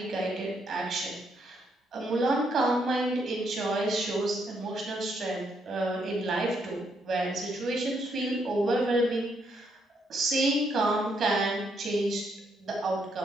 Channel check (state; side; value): normal; both; correlation 0.75